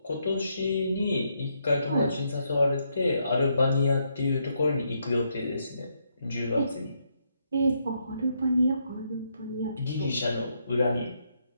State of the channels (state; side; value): inverted; both; correlation -0.77